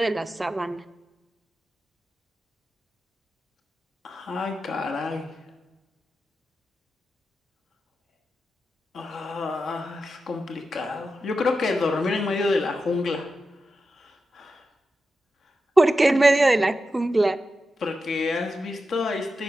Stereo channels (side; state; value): both; normal; correlation 0.90